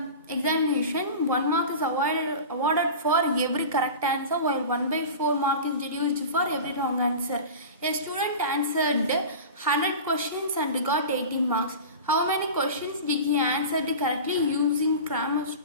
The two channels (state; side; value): inverted; both; correlation -0.32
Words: examination, 1 mark is awarded for every correct answer, while 1/4 mark is deduced for every wrong answer. A student answered 100 questions and got 18 marks. How many questions did he answer correctly using Cramer's